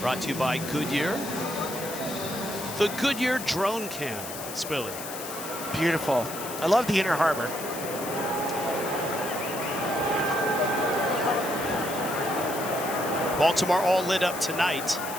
to you by Goodyear. The Goodyear drone cam, Spilly. Beautiful. I love the Inner Harbor. Baltimore all lit up tonight.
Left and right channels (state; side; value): noise; left; hiss, 9 dB below the sound